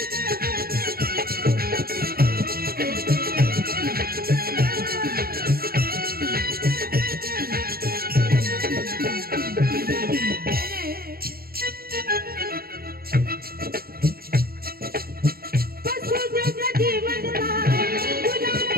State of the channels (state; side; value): late; left; 0.44 ms